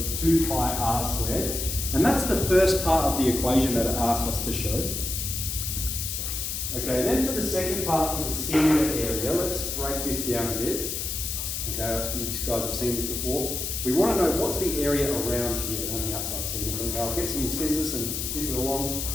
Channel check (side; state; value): left; noise; hiss, 3 dB below the sound